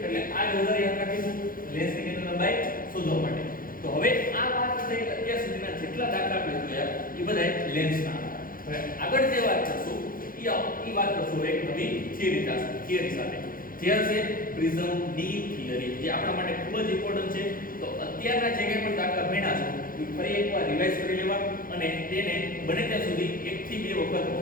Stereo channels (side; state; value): right; late; 0.41 ms